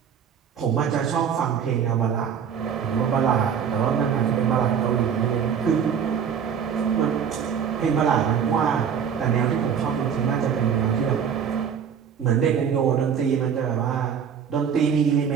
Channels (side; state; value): left; quieter; 7.6 dB